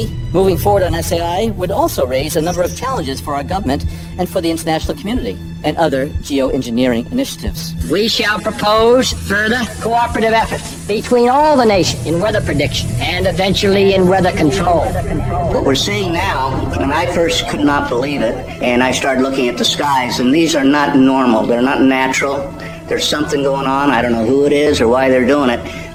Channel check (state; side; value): identical; both; correlation 1.00